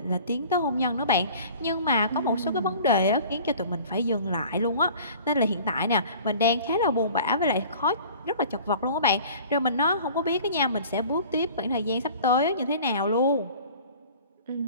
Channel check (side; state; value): both; inverted; correlation -0.46